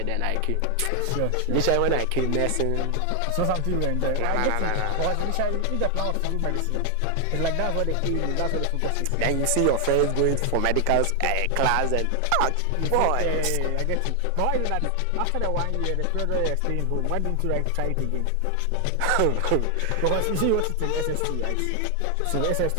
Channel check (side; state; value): both; different; correlation 0.00